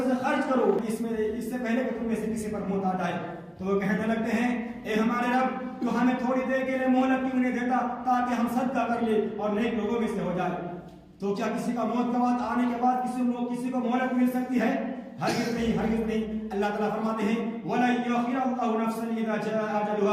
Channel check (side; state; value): both; identical; correlation 1.00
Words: سے خرچ کرو اس سے پہلے کہ تم میں سے کسی پر موت آ جائے۔ تو وہ کہنے لگتے ہیں اے ہمارے رب تو ہمیں تھوڑی دیر کے لیے مہلت کیوں نہیں دیتا تاکہ ہم صدقہ کر لیں اور نیک لوگوں میں سے ہو جائے۔ تو کیا کسی کا موت کا وقت آنے کے بعد کسی کو مہلت مل سکتی ہے؟ ہرگز نہیں، ہرگز نہیں۔ اللہ تعالیٰ فرماتے ہیں وَلَن يُؤَخِّرَ اللَّهُ نَفْسًا إِذَا جَاءَ